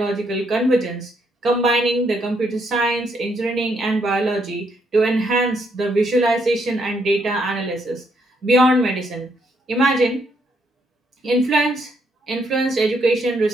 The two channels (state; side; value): normal; both; correlation 0.74